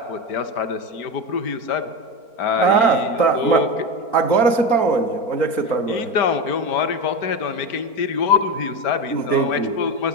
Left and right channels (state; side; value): late; right; 4.4 ms